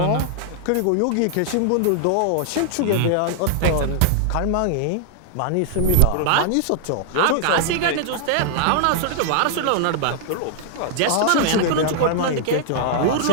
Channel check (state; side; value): different; both; correlation -0.01